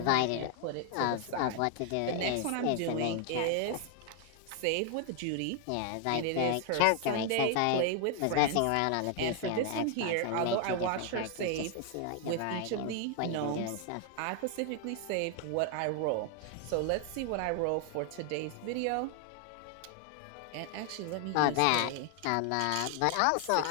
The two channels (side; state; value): both; different; correlation 0.00